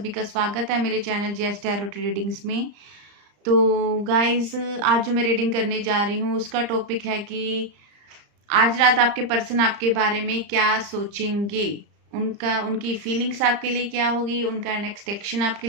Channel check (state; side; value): late; left; 34 ms